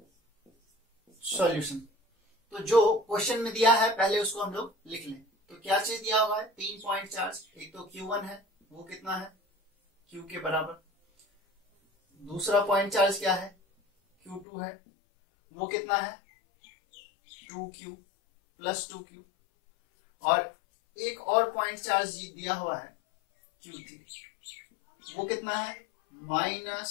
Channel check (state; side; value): drops out; right; at 14.5 s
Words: सॉल्यूशन। तो जो क्वेश्चन में दिया है पहले उसको हम लोग लिख लें। तो क्या चीज दिया हुआ है, 3 पॉइंट चार्ज। एक तो Q1 है, वो कितना है, Q के बराबर। दूसरा पॉइंट चार्ज क्या है, Q2 है, वो कितना है, 2Q +2Q। और एक और पॉइंट चार्ज दिया हुआ है Q3, वो कितना है,